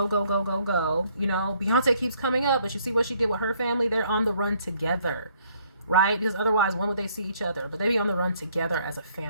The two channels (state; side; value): inverted; both; correlation -0.65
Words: go, go, go, go. You know, Beyonce keeps coming up, but you see what she did with her family? They're on the run together, right? Because otherwise, when would they see each other? But they be on the run together as a